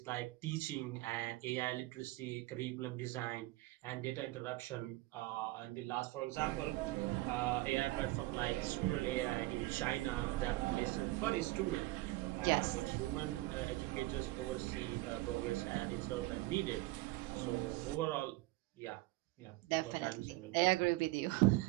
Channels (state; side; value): quieter; left; 19.6 dB